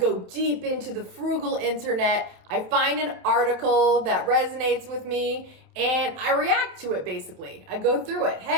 deep into the frugal internet. I find an article that resonates with me and I react to it basically. I go through it.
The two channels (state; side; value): late; left; 28 ms